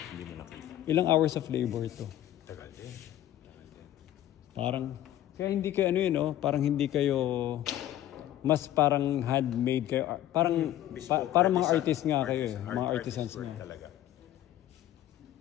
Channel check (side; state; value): right; quieter; 13.0 dB